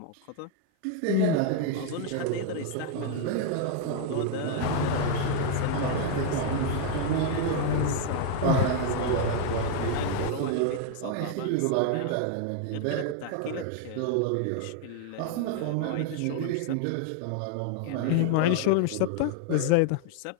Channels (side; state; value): both; different; correlation 0.00